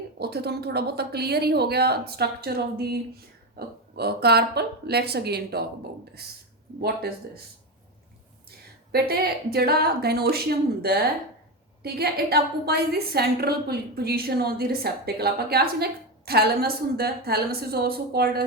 ਉੱਥੇ ਤੁਹਾਨੂੰ ਥੋੜਾ ਬਹੁਤਾ ਕਲੀਅਰ ਹੀ ਹੋ ਗਿਆ structure of the carpal. Let's again talk about this, what is this. ਬੇਟੇ ਜਿਹੜਾ ਗਾਇਨੋਸ਼ੀਅਮ ਹੁੰਦਾ ਹੈ, ਠੀਕ ਹੈ, ਇਟ ਆਕੂਪਾਈਜ਼ ਦੀ ਸੈਂਟਰਲ ਪੋਜੀਸ਼ਨ ਆਨ ਦੀ ਰਿਸੈਪਟੇਕਲ। ਆਪਾਂ ਕਿਹਾ ਸੀ ਨਾ ਇੱਕ ਥੈਲਮਸ ਹੁੰਦਾ, ਥੈਲਮਸ ਇਜ਼ ਆਲਸੋ ਕਾਲਡ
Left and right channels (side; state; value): both; normal; correlation 0.15